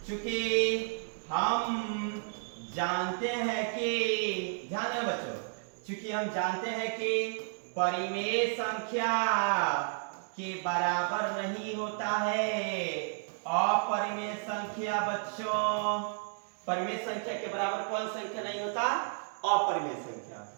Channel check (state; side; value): silent; left; 56 dB below the other